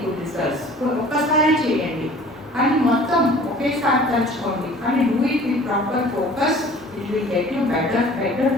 good results. ఒక్కసారి చేయండి కానీ మొత్తం ఒకేసారి తలుచుకోండి, కానీ do it with proper focus, it will get you better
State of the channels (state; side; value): normal; both; correlation 0.48